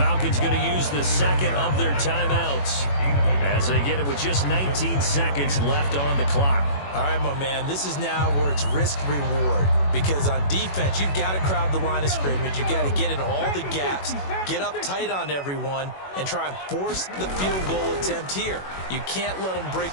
going to use the 2nd of their timeouts as they get it with just 19 seconds left on the clock. All right, my man, this is now where it's risk-reward. Because on defense, you've got to crowd the line of scrimmage. You've got to get in all the gaps, get up tight on everyone, and try and force the field goal attempt here. You can't let them break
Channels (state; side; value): late; right; 21 ms